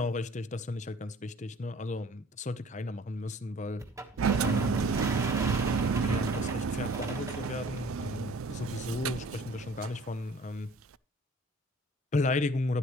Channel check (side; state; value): both; normal; correlation 0.51